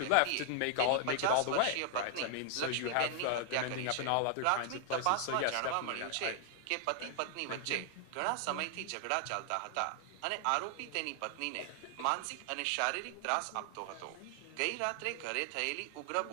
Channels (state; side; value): different; both; correlation 0.00